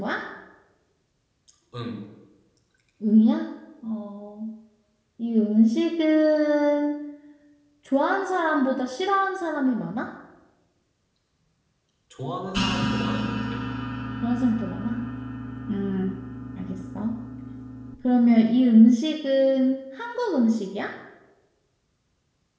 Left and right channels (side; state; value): both; identical; correlation 1.00